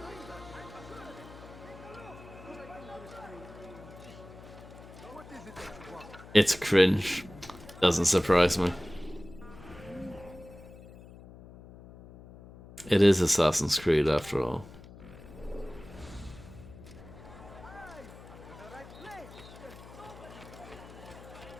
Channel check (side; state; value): left; noise; hum, 18 dB below the sound